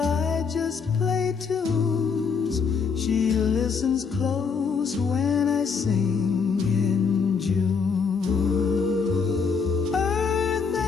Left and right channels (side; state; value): right; quieter; 5.6 dB